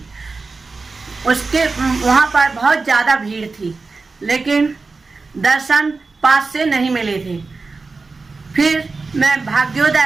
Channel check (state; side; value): quieter; left; 4.0 dB